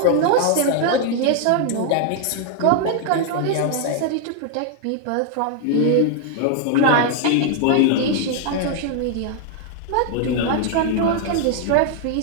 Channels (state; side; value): different; both; correlation 0.00